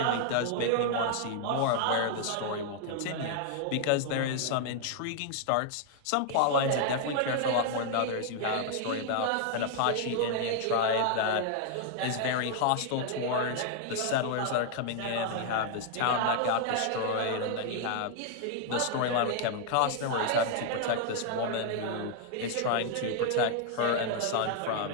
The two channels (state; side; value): different; both; correlation 0.00